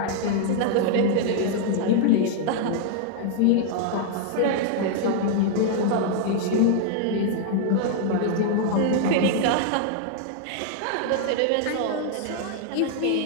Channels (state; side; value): different; both; correlation 0.00